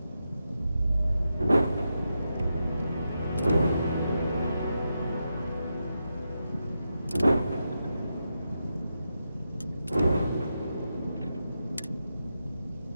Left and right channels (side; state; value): both; inverted; correlation -0.87